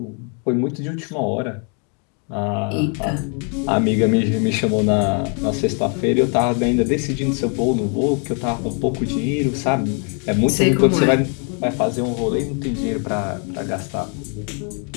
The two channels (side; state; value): right; quieter; 38.9 dB